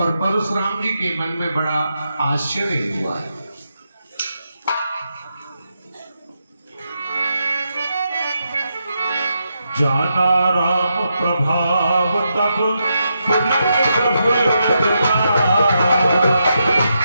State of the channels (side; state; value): both; inverted; correlation -0.84